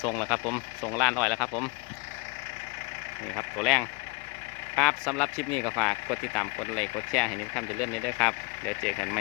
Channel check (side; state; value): right; quieter; 28.8 dB